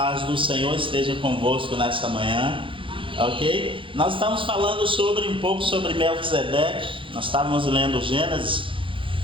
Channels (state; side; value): late; left; 0.25 ms